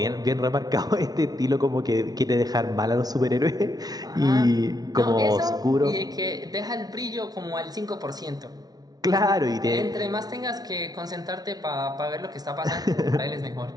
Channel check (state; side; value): late; left; 0.19 ms